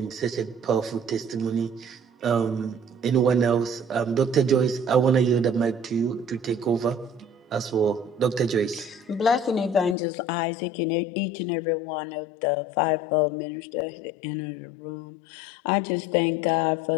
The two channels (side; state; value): right; drops out; at 10.0 s